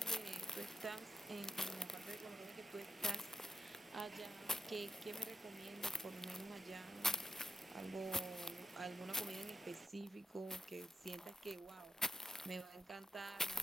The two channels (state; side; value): normal; both; correlation 0.89